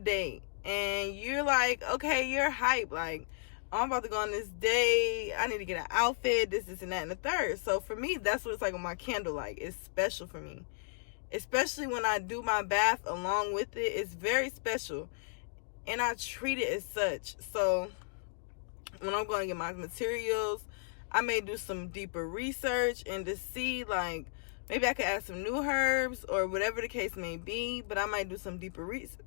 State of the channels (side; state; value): right; silent; digital silence